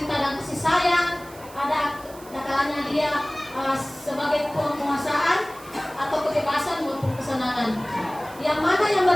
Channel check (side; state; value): right; noise; hiss, 21 dB below the sound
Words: dan kasih sayang, ada kalanya dia sebagai penguasaan atau kebebasan maupun kesenangan. Yang mana yang